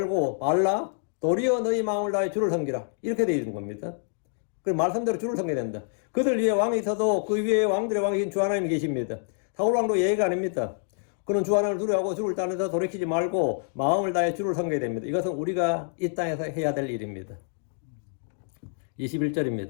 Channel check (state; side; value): silent; right; digital silence